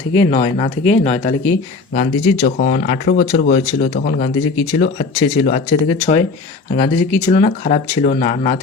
থেকে নয়, না থেকে নয়। তাহলে কি গান্ধীজির যখন 18 বছর বয়স ছিল, তখন গান্ধীজি কি ছিল, আছে ছিল, আছে থেকে 6। আর গান্ধীজি কি ছিল না, খারাপ ছিল না, না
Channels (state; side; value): quieter; right; 4.0 dB